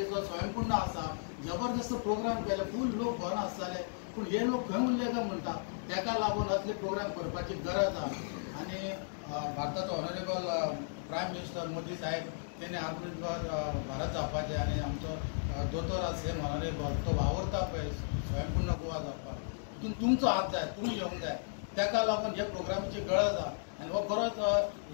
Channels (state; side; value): silent; right; digital silence